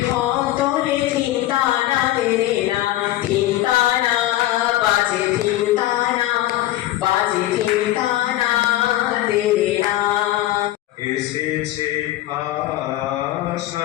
তোলে ধিনতানা দেরে না, ধিনতানা বাজে ধিনতানা বাজে ধিনতানা দেরে না। এসেছে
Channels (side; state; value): right; quieter; 15.2 dB